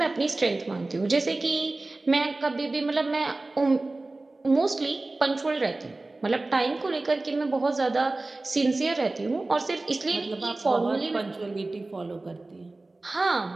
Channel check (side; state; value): left; quieter; 3.1 dB